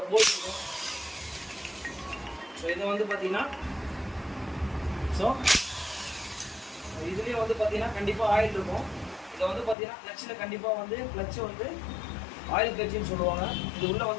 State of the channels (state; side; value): drops out; right; at 9.8 s